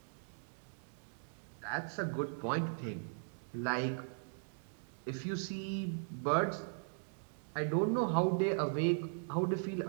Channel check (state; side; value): silent; left; digital silence